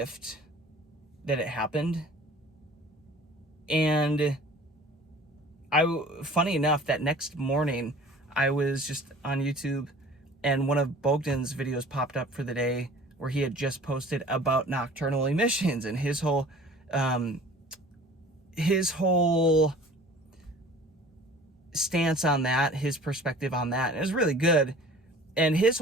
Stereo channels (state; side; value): normal; both; correlation 0.46